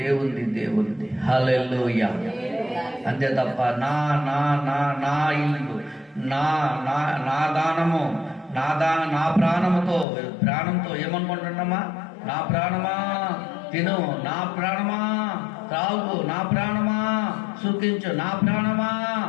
హల్లెలూయా. అంతే తప్ప నా ఇల్లు, నా దానము, నా ప్రాణంతో ఏమనుకుంటున్నామా? నా ప్రాణమా తిను, నా ప్రాణమా త్రాగు, నా ప్రాణమా సుఖించు, నా ప్రాణమా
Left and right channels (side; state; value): right; drops out; at 10.1 s